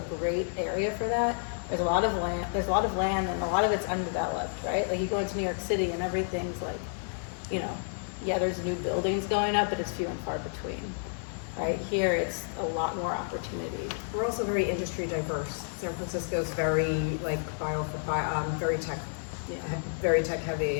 great area for that. There's a lot of land, and a lot of it's undeveloped, right? Like you go into New York City and everything's like, you know, yeah, there's new buildings going up, but it's few and far between. Right here, it's a lot more opportunity. We're also very industry diverse. San Francisco's very like very tech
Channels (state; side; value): silent; right; digital silence